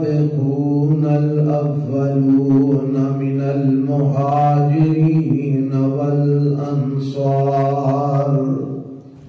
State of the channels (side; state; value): both; identical; correlation 1.00